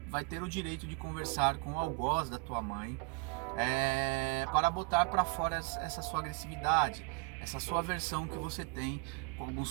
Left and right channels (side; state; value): left; quieter; 27.2 dB